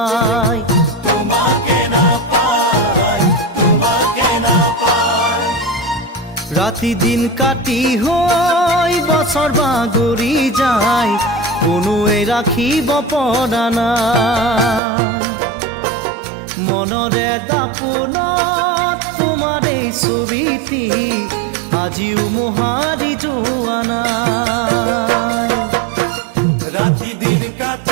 তোমাকে নাপায় তোমাকে নাপায়। ৰাতি দিন কাটি হৈ বছৰ বাগৰি যায় কোনোৱে ৰাখিব পৰা নাই। মনৰে দাপোনত তোমাৰ এই ছবিটি আজিও মোহাৰি যোৱা নাই। ৰাতি দিন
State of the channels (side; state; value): left; drops out; at 14.8 s